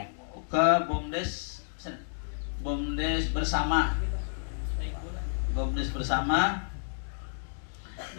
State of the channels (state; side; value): silent; right; digital silence